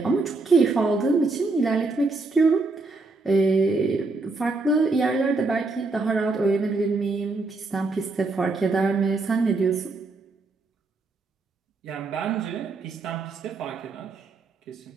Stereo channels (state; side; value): quieter; left; 3.6 dB